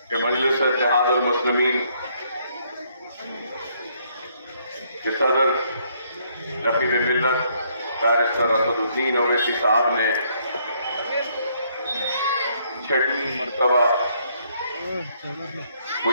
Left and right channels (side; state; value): both; inverted; correlation -0.69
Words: کہ مجلس اتحاد المسلمین کے صدر رفیع ملت بیرسٹر اسد الدین اویسی صاحب نے 6 مرتبہ